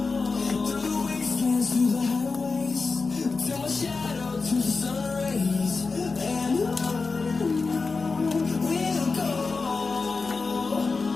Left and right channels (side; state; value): right; quieter; 4.2 dB